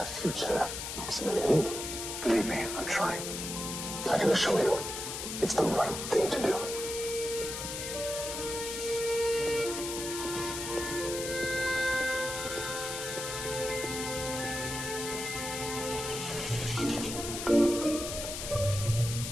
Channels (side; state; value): left; noise; hiss, 5 dB below the sound